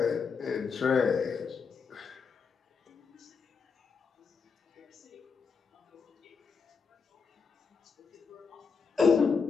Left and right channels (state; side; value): quieter; right; 5.5 dB